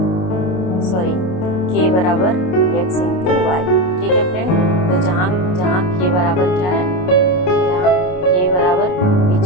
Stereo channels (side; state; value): right; late; 28 ms